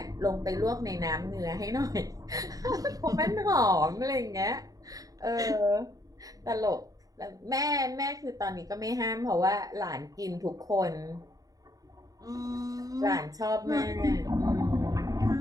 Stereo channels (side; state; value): left; late; 0.18 ms